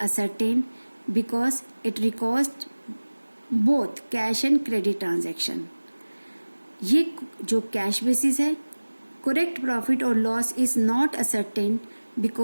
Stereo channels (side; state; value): both; inverted; correlation -1.00